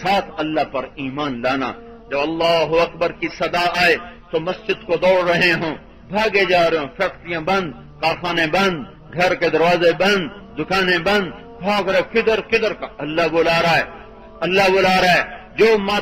اللہ پر ایمان لانا۔ جب اللہ اکبر کی صدا آئے تو مسجد کو دوڑ رہے ہوں، بھاگے جا رہے ہوں، فیکٹریاں بند، کارخانے بند، گھر کے دروازے بند، دکانیں بند، بھاگ رہے کدھر کدھر کا اللہ بلا رہا ہے، اللہ بلا رہا ہے۔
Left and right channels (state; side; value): identical; both; correlation 1.00